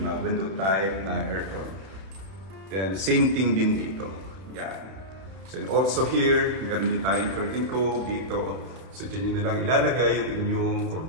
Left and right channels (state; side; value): late; left; 31 ms